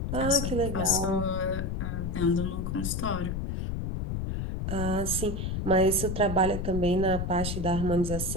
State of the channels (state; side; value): noise; left; rumble, 3 dB below the sound